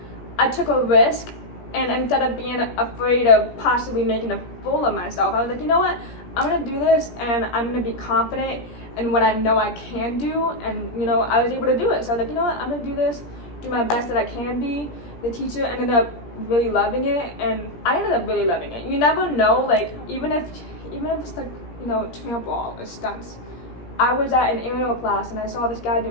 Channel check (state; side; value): late; right; 17 ms